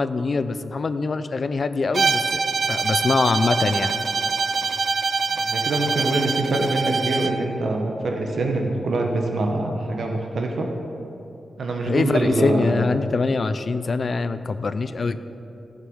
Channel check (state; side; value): normal; both; correlation 0.87